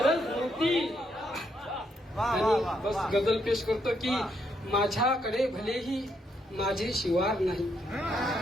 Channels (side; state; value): both; normal; correlation 0.76